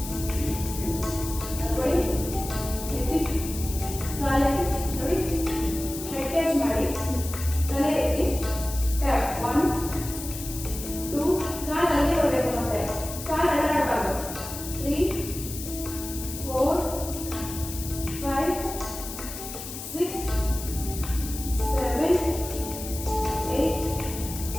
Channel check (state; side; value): noise; left; hiss, 9 dB below the sound